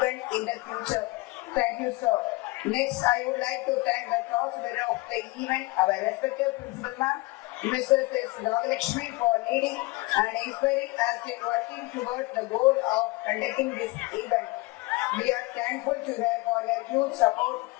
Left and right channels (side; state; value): right; quieter; 23.0 dB